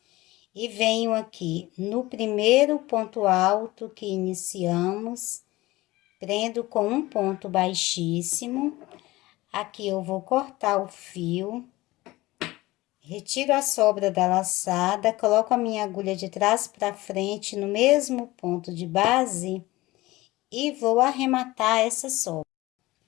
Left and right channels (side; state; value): right; quieter; 19.2 dB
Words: e venho aqui no primeiro ponto alto que iniciamos, prendo com um ponto baixíssimo. Aqui eu vou cortar o fio, retiro a sobra da laçada, coloco a minha agulha de trás para frente no mesmo ponto de base e vou arrematar essa sobra.